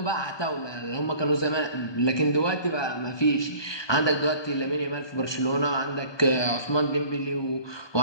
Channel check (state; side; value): late; right; 1.2 ms